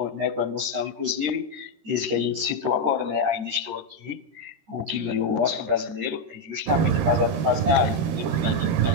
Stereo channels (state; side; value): late; left; 13 ms